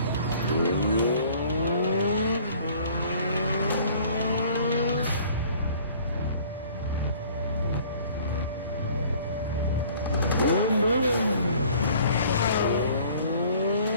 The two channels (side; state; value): both; inverted; correlation -0.53